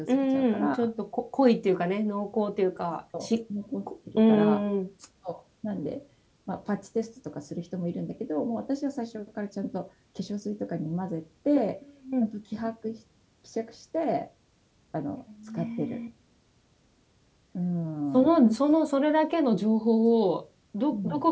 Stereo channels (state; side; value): identical; both; correlation 1.00